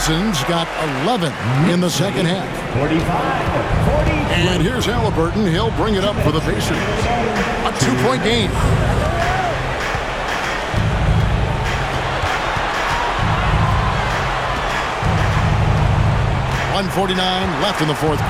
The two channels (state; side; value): identical; both; correlation 1.00